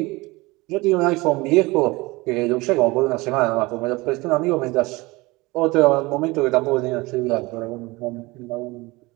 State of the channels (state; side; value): quieter; left; 22.6 dB